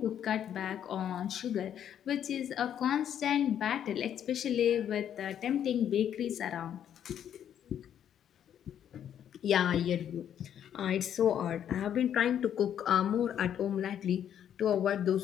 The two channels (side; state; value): right; quieter; 9.6 dB